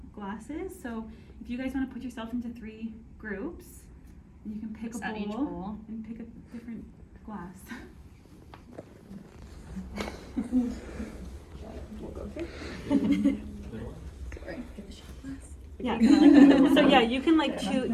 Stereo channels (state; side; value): identical; both; correlation 1.00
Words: glasses. So if you guys want to put yourself into 3 groups, you can pick a bowl and pick a different glass. Yeah. So yeah, you can like choose